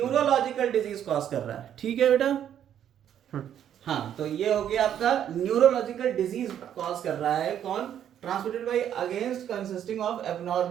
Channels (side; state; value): left; quieter; 9.9 dB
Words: डिजीज कॉज कर रहा है, ठीक है बेटा। हाँ, तो ये हो गया आपका न्यूरोलॉजिकल डिजीज कॉज कर रहा है। कौन? ट्रांसमिटेड बाय अगेंस्ट consisting of